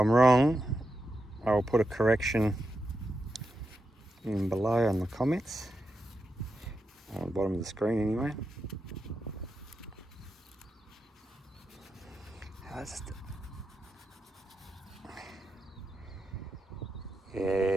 wrong, I will put a correction in below on the comments. On the bottom of the screen anyway. Yeah,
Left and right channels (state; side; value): normal; both; correlation 0.87